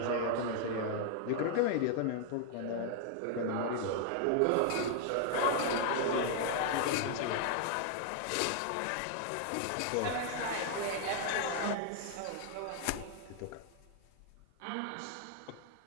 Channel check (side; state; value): both; different; correlation -0.01